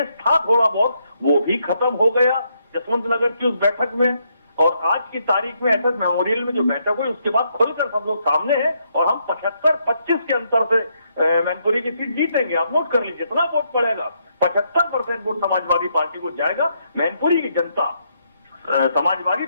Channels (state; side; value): inverted; both; correlation -0.76